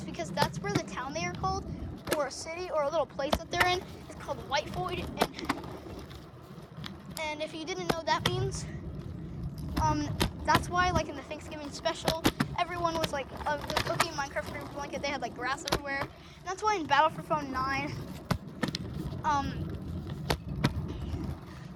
because that's where the town they are called, or a city, or a little place that they're in, is called White Void. And if you didn't know what that means, that's why, like, in the Thanksgiving special, everyone was, like, just cooking Minecraft for a blanket. They had, like, grass everywhere. And that's why in Battle for Phone 9,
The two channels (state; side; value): identical; both; correlation 1.00